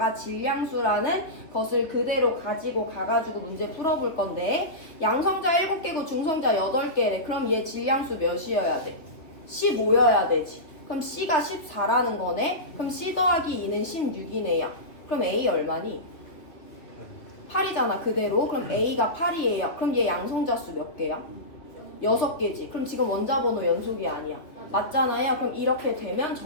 질량수라는 것을 그대로 가지고 가가지고 문제 풀어볼 건데 양성자 7개고 중성자 8개래. 그럼 얘 질량수 몇이어야 돼? 15여야 되지. 그럼 C가 14라는 거네. 그럼 C 더하기 2는 16이네요. 그럼 A 얼마니? 8이잖아 그대로. 그럼 A가 8이에요. 그럼 얘 양성자 수 몇 개야? 6개지. 그럼 지금 원자번호 연속이 아니야. 맞잖아요. 그럼 이렇게 되면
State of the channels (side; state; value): right; late; 2.6 ms